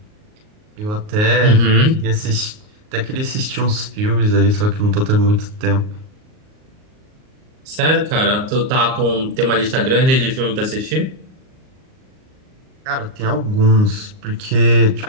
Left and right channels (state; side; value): late; left; 38 ms